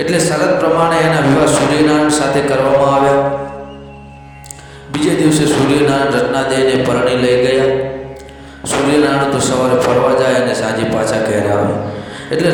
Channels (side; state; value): both; identical; correlation 1.00